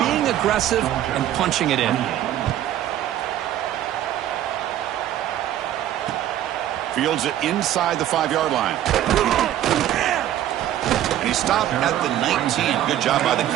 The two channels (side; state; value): left; quieter; 12.1 dB